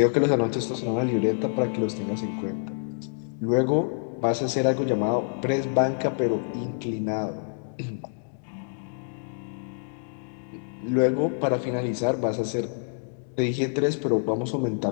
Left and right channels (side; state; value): right; silent; digital silence